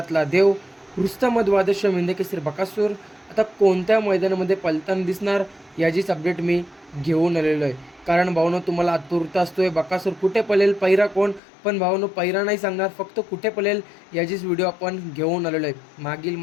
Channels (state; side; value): drops out; right; at 11.4 s